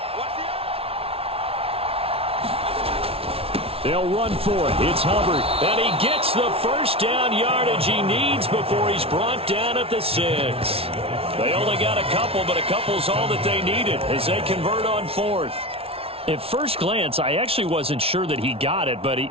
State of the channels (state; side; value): late; left; 0.27 ms